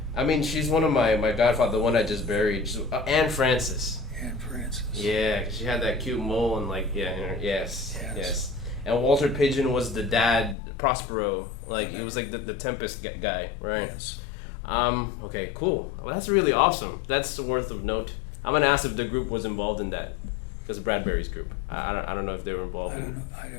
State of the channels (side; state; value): right; drops out; at 10.6 s